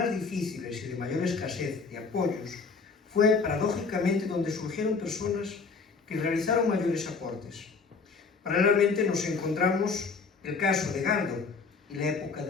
difíciles y de mayor escasez de apoyos fue paradójicamente donde surgieron personas que realizaron mayores aportes. Paralelamente nos encontramos el caso de Galdo y la época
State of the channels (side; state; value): right; quieter; 4.7 dB